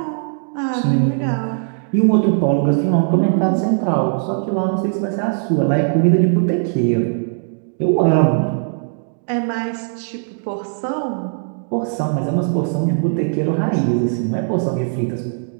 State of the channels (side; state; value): left; silent; digital silence